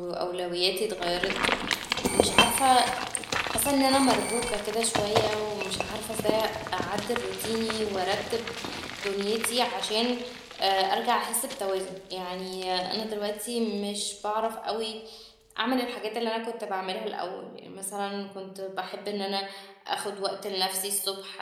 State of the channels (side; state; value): both; identical; correlation 1.00